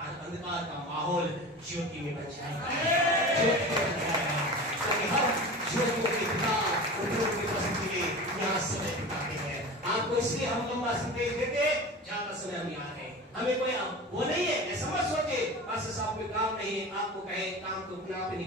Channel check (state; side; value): normal; both; correlation 0.33